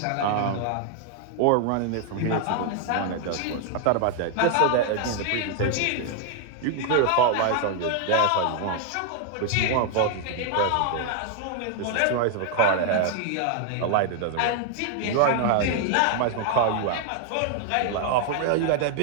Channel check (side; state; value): both; different; correlation 0.00